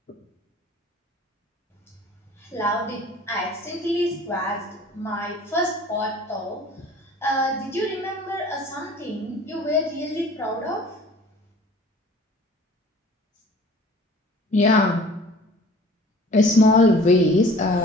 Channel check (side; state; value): both; normal; correlation 0.48